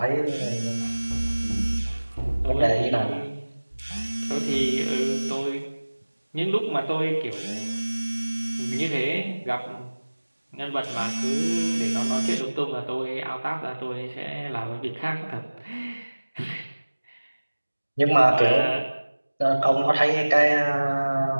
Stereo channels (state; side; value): inverted; both; correlation -1.00